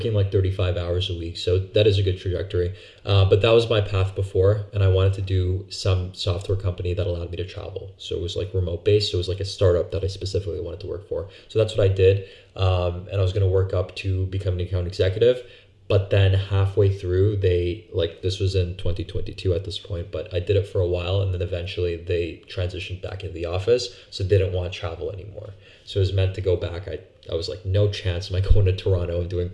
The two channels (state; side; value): identical; both; correlation 1.00